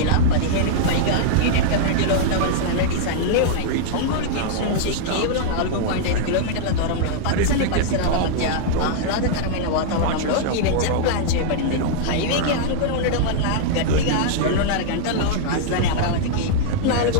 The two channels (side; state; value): both; different; correlation -0.01